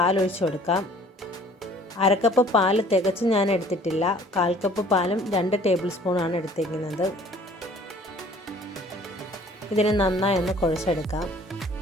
ഒഴിച്ചു കൊടുക്കാം. അരക്കപ്പ് പാൽ തികച്ച് ഞാൻ എടുത്തിട്ടില്ല. 1/4 കപ്പ് പാലും 2 ടേബിൾ സ്പൂണാണ് എടുത്തിരിക്കുന്നത്. ഇതിനെ നന്നായി ഒന്ന് കുഴച്ചെടുക്കാം.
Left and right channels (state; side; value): normal; both; correlation 0.54